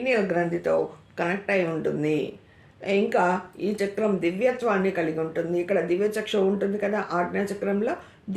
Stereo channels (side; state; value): both; identical; correlation 1.00